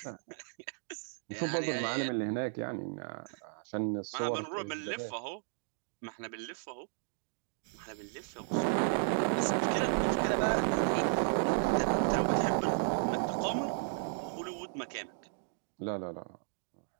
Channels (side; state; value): left; silent; digital silence